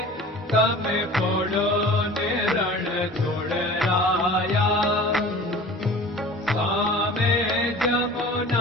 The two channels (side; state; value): both; normal; correlation 0.41